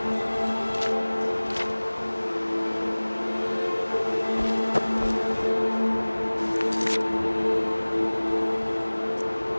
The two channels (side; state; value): both; inverted; correlation -1.00